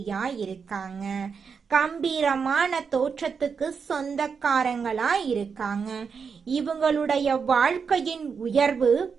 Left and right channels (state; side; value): quieter; left; 5.9 dB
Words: இருக்காங்க. கம்பீரமான தோற்றத்துக்கு சொந்தக்காரங்களா இருக்காங்க. இவங்களுடைய வாழ்க்கையின் உயர்வு